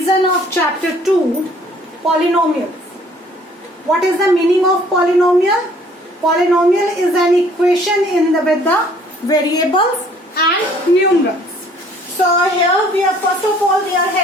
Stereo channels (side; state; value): both; normal; correlation 0.58